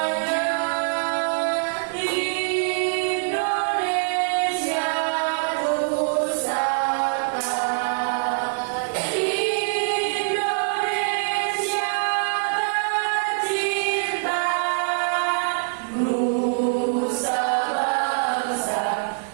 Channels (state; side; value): silent; left; digital silence